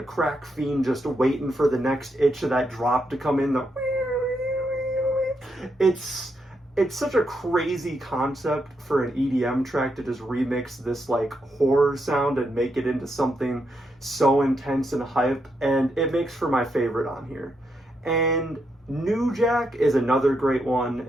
crack fiend just waiting for the next itch of that drop to come in. It's such a crazy concept for an EDM track to just remix this like horror sound and make it into something so intense and hype, and it makes for my favorite on here. And New Jack is another great one,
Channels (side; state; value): both; normal; correlation 0.80